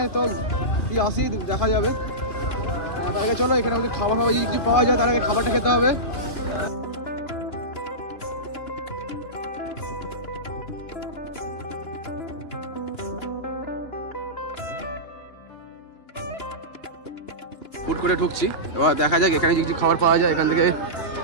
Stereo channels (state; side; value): late; right; 2.8 ms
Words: তো আসি দেখা যাবে। তার আগে চলো এখানে খাবার ফাবার যদি কিছু পাওয়া যায়, তার আগে খাবারটা খেতে হবে। ফুড করে ঢুকছি, এবার দেখা যাক এখানে যদি কিছু খাবার পাওয়া যায়, এখান থেকে